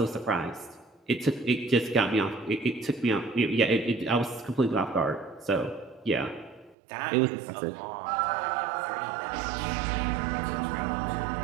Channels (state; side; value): drops out; left; at 6.8 s